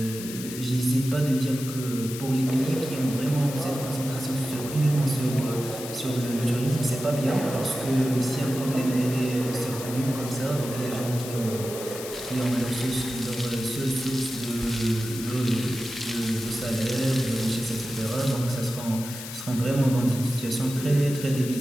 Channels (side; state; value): left; noise; hiss, 10 dB below the sound